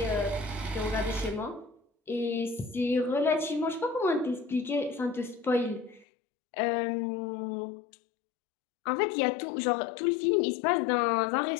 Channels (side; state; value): right; drops out; at 6.1 s